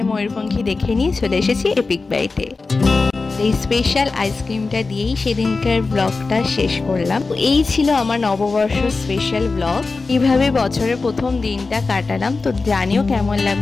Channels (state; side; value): quieter; right; 3.9 dB